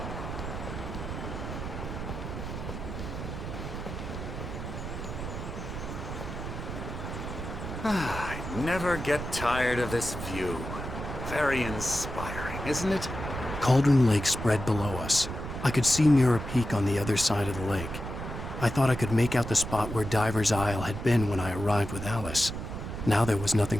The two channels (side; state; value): right; noise; rumble, 7 dB below the sound